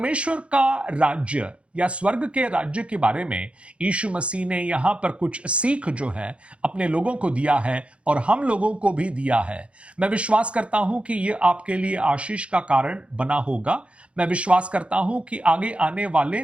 का राज्य या स्वर्ग के राज्य के बारे में यीशु मसीह ने यहां पर कुछ सीख जो है अपने लोगों को दिया है और हम लोगों को भी दिया है। मैं विश्वास करता हूं कि यह आपके लिए आशीष का कारण बना होगा। मैं विश्वास करता हूं कि आगे आने वाले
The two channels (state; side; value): late; left; 0.060 ms